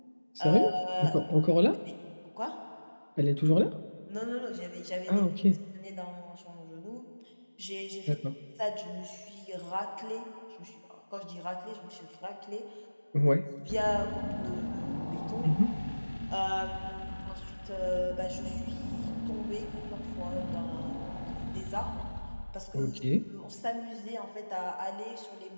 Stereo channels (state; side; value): inverted; both; correlation -1.00